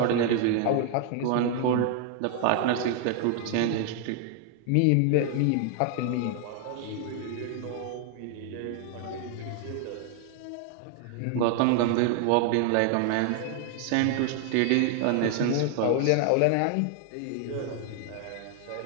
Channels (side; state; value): both; different; correlation 0.00